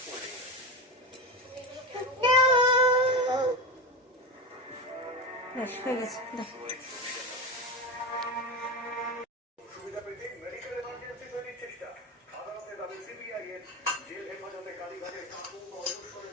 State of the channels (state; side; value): normal; both; correlation 0.20